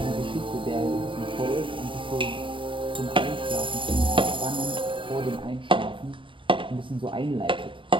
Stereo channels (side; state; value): left; late; 0.25 ms